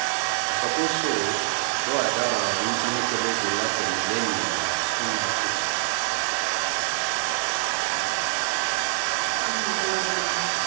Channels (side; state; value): left; silent; digital silence